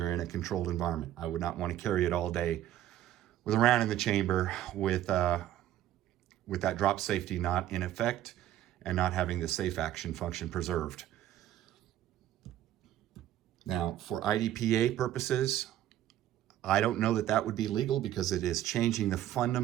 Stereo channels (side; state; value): left; quieter; 12.6 dB